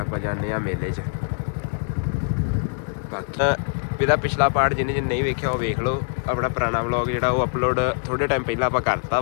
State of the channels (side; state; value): right; silent; digital silence